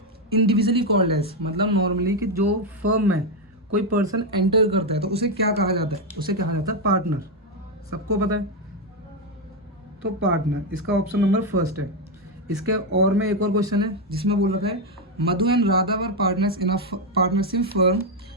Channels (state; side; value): normal; both; correlation 0.05